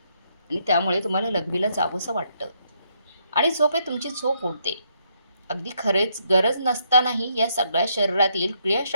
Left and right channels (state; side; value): inverted; both; correlation -0.74